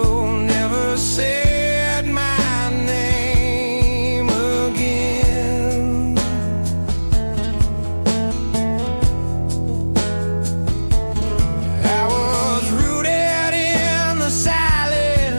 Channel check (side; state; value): both; inverted; correlation -1.00